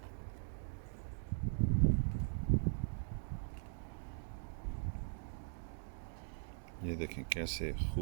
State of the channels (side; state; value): left; silent; digital silence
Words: ये देखें कैसे